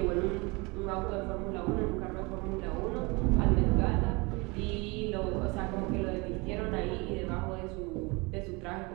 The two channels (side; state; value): left; quieter; 26.9 dB